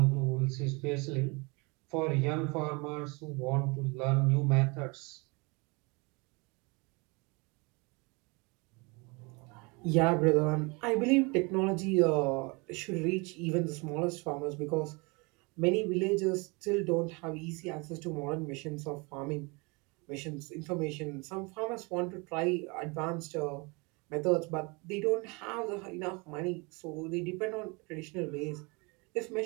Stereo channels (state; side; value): quieter; left; 28.5 dB